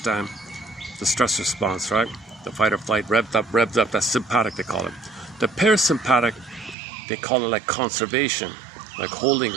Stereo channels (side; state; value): left; drops out; at 6.8 s